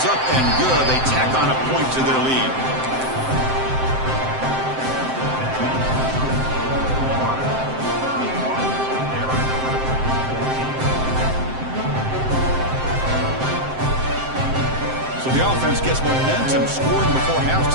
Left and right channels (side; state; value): left; late; 7.7 ms